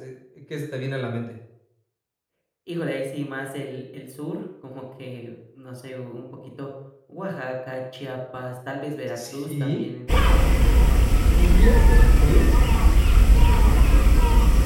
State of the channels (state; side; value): identical; both; correlation 1.00